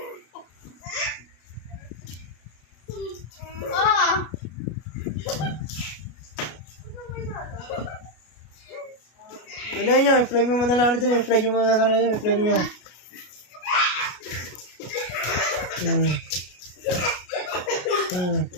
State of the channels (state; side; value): late; right; 33 ms